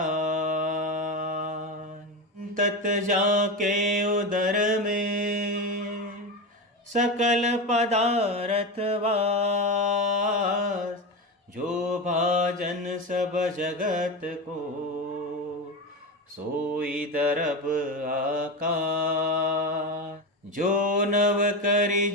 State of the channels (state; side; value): normal; both; correlation 0.19